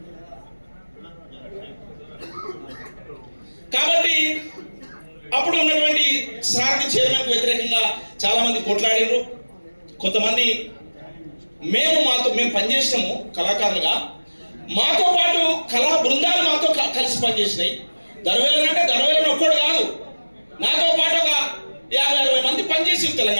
కాబట్టి అప్పుడు ఉన్నటువంటి సారథి చైర్మన్కు వ్యతిరేకంగా చాలా మంది కొట్లాడినారు. కొంతమంది మేము పనిచేసినాము కళాకారులుగా, మాతో పాటు కళా బృందాలు మాతో కలిసి పనిచేసినాయి. దర్వేలను ఒక్కడు కాదు, నాతో పాటు ఒక 50-60 మంది పనిచేసి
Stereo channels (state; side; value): inverted; both; correlation -1.00